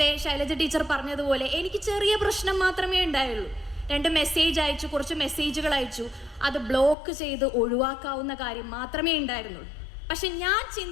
ശൈലജ ടീച്ചർ പറഞ്ഞതുപോലെ എനിക്ക് ചെറിയ പ്രശ്നം മാത്രമേ ഉണ്ടായുള്ളൂ. 2 മെസ്സേജ് അയച്ചു, കുറച്ച് മെസ്സേജുകൾ അയച്ചു, അത് ബ്ലോക്ക് ചെയ്ത് ഒഴിവാക്കാവുന്ന കാര്യം മാത്രമേ ഉണ്ടായിരുന്നുള്ളൂ. പക്ഷെ ഞാൻ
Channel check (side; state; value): right; drops out; at 7.0 s